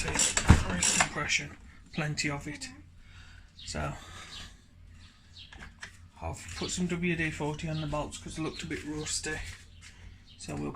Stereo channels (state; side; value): identical; both; correlation 1.00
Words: there is compression, plenty of it. So I've put some WD-40 on the bolts because they looked a bit rusty. So we'll